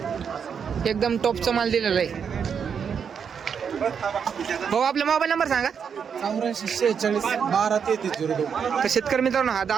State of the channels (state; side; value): quieter; left; 7.0 dB